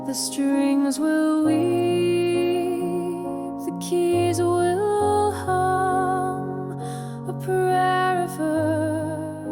The strings will weep, the keys will hum, a prayer of earth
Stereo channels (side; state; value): both; identical; correlation 1.00